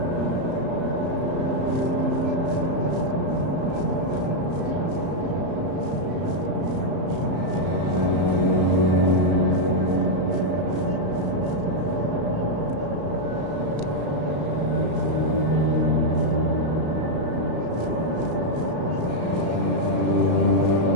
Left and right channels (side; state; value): left; late; 34 ms